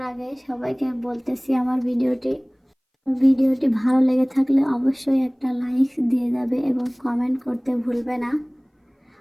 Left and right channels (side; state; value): both; identical; correlation 1.00